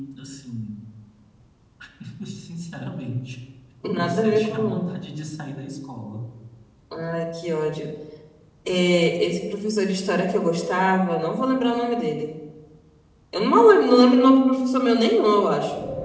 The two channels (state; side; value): identical; both; correlation 1.00